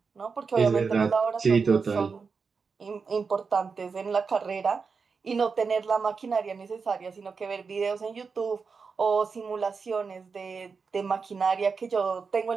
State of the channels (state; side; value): quieter; left; 5.1 dB